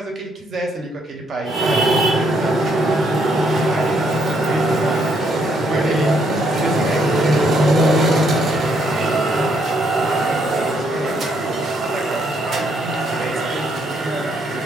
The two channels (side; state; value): both; normal; correlation 0.72